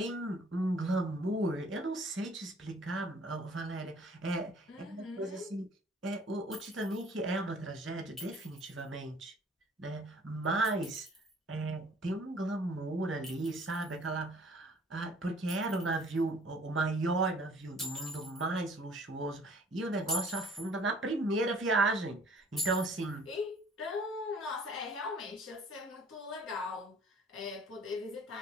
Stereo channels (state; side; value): normal; both; correlation 0.54